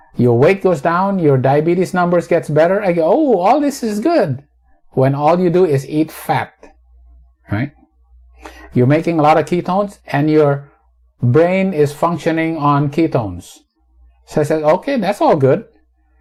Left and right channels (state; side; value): identical; both; correlation 1.00